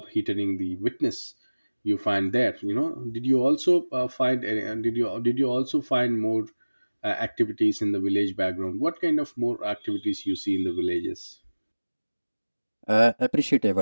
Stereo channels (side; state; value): both; inverted; correlation -1.00